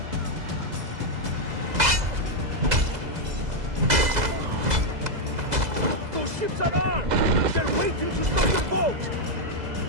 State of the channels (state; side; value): late; left; 2.0 ms